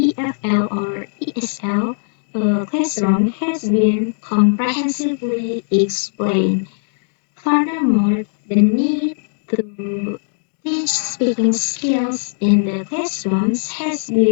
or ESL classroom has been comprehensively explained. Furthermore, the need to teach speaking skills in the classrooms has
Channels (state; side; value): silent; right; digital silence